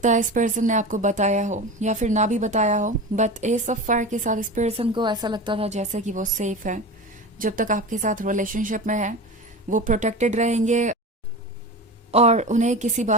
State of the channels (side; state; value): both; normal; correlation 0.29